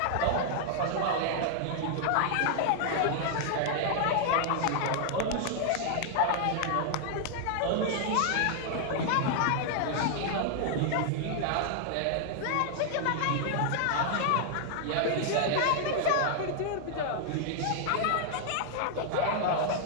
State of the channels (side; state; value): both; different; correlation 0.00